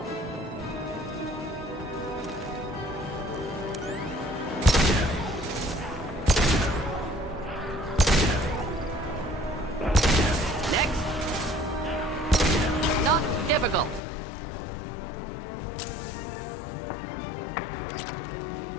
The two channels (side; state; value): right; drops out; at 14.0 s